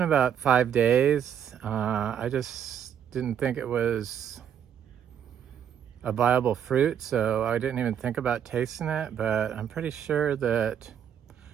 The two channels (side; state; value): left; quieter; 8.9 dB